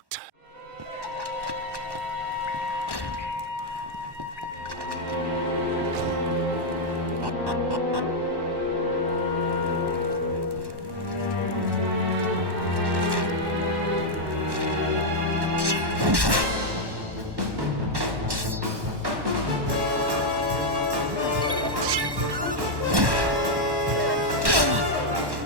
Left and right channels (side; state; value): left; late; 1.1 ms